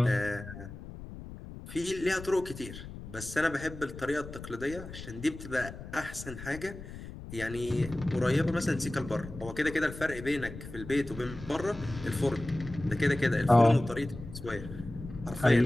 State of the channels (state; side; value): noise; left; rumble, 12 dB below the sound